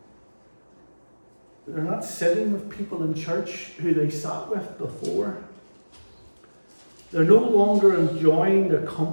They're not sitting with people in church who they sat with before. They're no longer enjoying the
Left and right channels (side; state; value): both; inverted; correlation -1.00